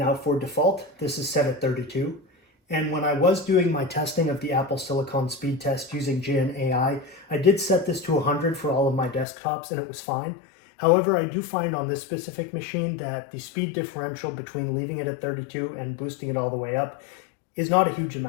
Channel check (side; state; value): right; drops out; at 9.2 s